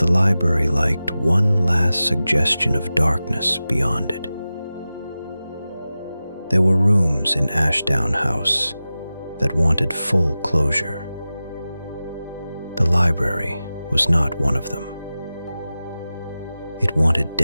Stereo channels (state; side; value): inverted; both; correlation -0.95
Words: library liked one last suggestion of darkness beyond it. There were rooms in Ashdown House that wanted full closure. The library was not one of them. It wanted